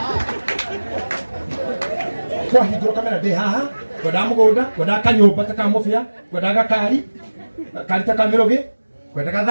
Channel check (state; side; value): inverted; both; correlation -1.00